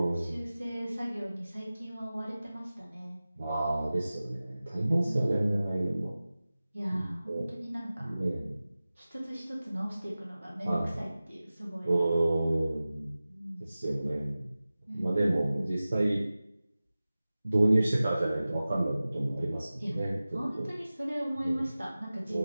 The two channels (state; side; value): inverted; both; correlation -0.96